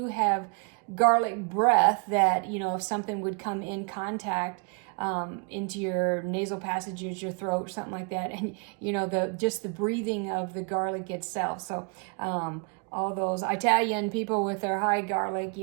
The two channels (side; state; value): left; quieter; 38.0 dB